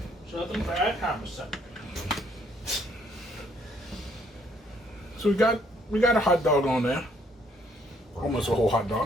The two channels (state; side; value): normal; both; correlation 0.67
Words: Something for that conversation. So we got a hot dog on there, almost a whole hot